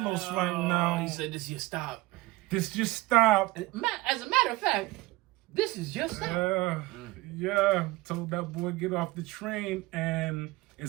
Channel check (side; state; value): left; quieter; 20.1 dB